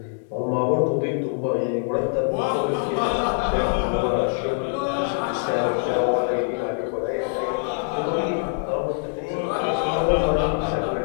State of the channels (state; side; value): silent; right; digital silence